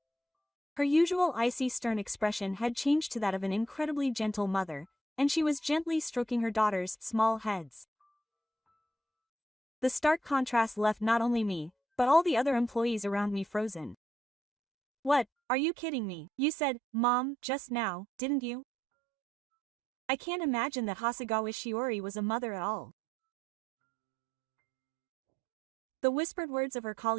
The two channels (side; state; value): left; drops out; at 15.2 s